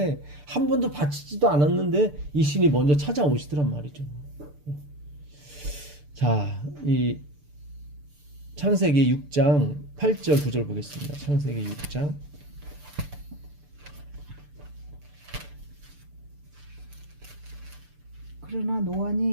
한 번도 바치지도 않았는데 이 신이 먼저 찾아오시더란 말이죠. 자, 이 창세기 6장 8절 9절 보겠습니다. 창세기 6장 그러나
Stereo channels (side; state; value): left; late; 6.8 ms